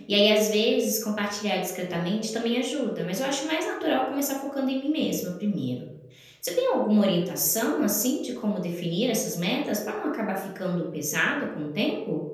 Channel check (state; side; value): identical; both; correlation 1.00